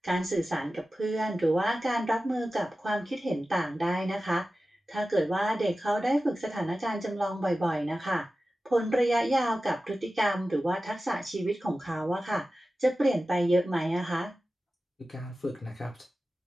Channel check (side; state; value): both; normal; correlation 0.95